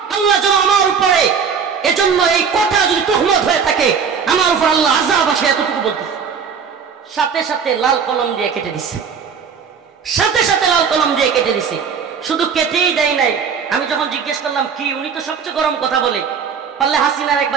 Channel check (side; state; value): left; quieter; 6.4 dB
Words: আল্লাহ যেন আমার উপরে, এজন্য এই কথা যদি তুহমত হয়ে থাকে আমার উপর আল্লাহ আযাব আসে, এতটুকু বলতেছে। সাথে সাথে লাল কলম দিয়ে কেটে দিছে, সাথে সাথে লাল কলম দিয়ে কেটে দিছে। শুধু কেটেই দেয় নাই, আমি যখন জিজ্ঞেস করলাম কি, উনি তো সবচেয়ে গরম কথা বলে, পারলে হাসিনার